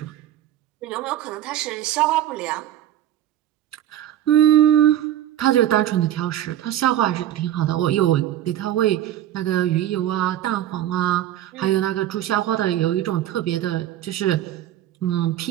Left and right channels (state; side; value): quieter; left; 12.1 dB